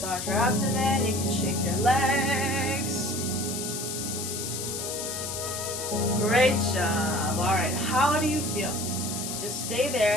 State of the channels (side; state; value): left; noise; hiss, 5 dB below the sound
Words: your abdomen. You can shake your legs. Great job. All right. How do you feel? Just stay